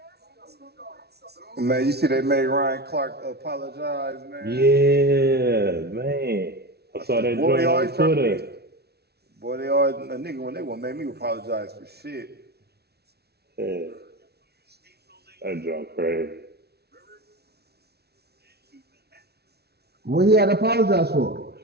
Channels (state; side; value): late; left; 0.47 ms